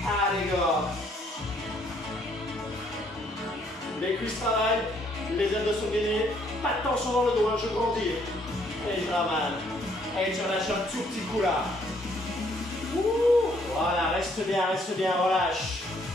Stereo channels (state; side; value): normal; both; correlation 0.67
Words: go. Les cuisses travaillent. Les abdos sont gainés. Pas de tension dans le dos, hein, je grandis. Et je ramène. Et tu relâches un tout petit coup là. Ouh, voilà, reste bien, relâche.